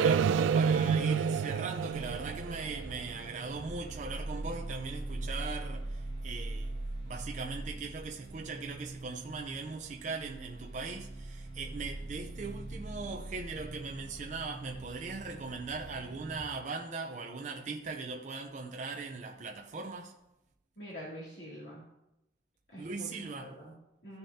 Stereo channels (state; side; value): quieter; left; 4.7 dB